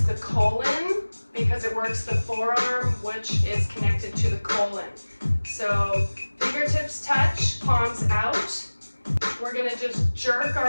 the colon because it works the forearm, which is connected to the colon. So fingertips touch, palms out. We're going to just jerk our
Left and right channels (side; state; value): both; inverted; correlation -1.00